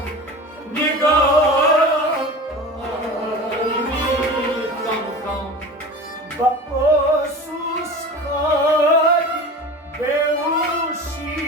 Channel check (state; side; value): normal; both; correlation 0.34